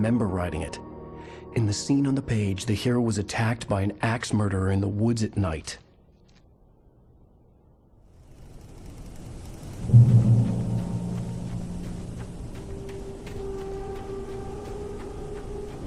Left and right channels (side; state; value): both; identical; correlation 1.00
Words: writing it. In the scene on the page, the hero was attacked by an axe murderer in the woods at night.